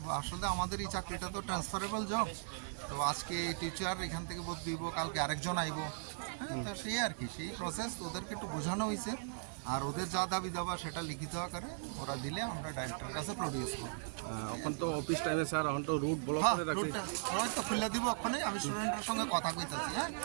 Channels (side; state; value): left; silent; 52 dB below the other